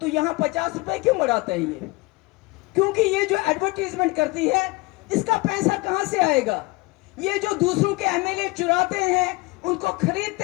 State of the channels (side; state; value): right; quieter; 23.4 dB